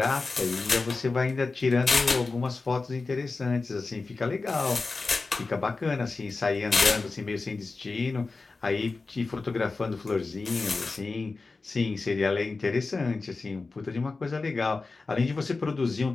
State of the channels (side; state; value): right; quieter; 3.9 dB